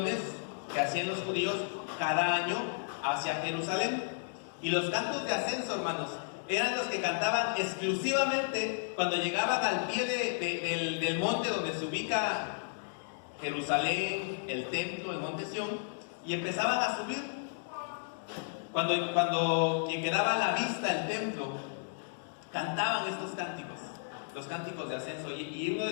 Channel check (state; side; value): silent; right; digital silence